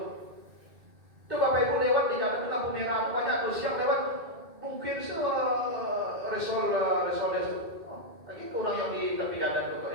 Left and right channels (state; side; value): late; left; 2.1 ms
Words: Itu Bapak Ibu lewat di jalan itu lampu merah itu banyak tuh siang lewat. Mungkin resol. Lagi itu orang yang di tepi jalan itu